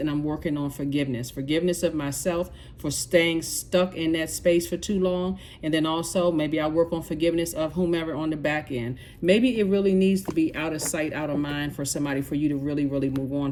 I'm working on forgiveness. Forgiveness of myself for staying stuck in that space for too long. And then also maybe I work on forgiveness of whomever on the back end. Maybe it really needs to be out of sight, out of mind for somebody, for you to really, really move on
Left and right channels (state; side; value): identical; both; correlation 1.00